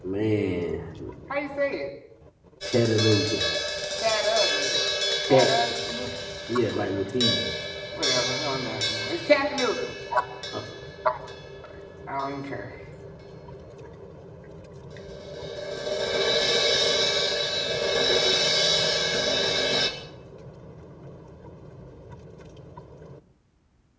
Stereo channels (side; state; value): both; identical; correlation 1.00